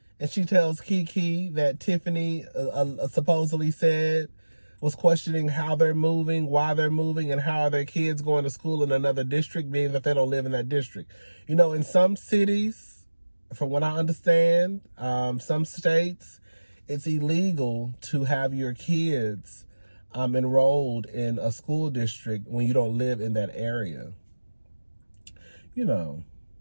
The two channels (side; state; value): both; inverted; correlation -1.00